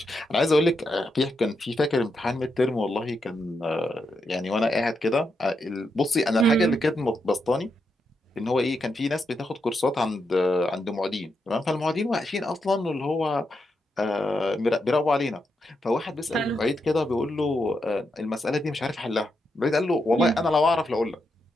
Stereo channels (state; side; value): normal; both; correlation 0.83